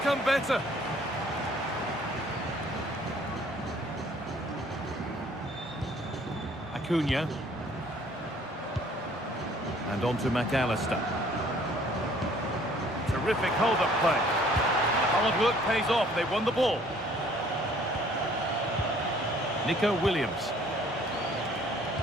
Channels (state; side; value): normal; both; correlation 0.57